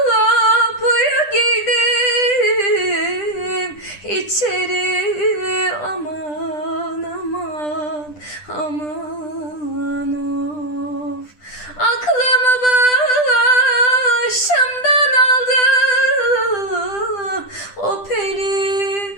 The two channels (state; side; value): late; right; 10 ms